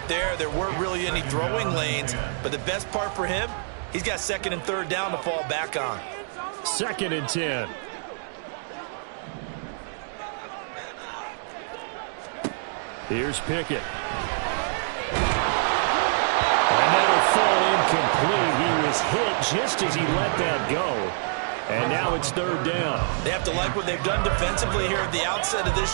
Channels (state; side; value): silent; left; digital silence